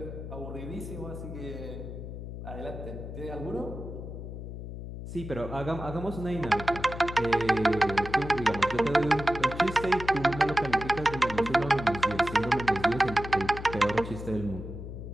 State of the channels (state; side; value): noise; left; hum, 9 dB below the sound